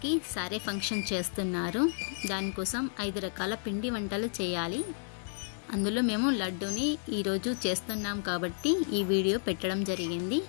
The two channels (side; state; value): right; silent; digital silence